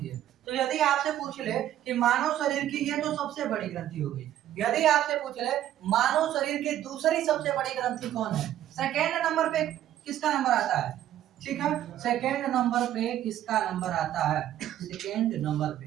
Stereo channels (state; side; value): quieter; left; 12.1 dB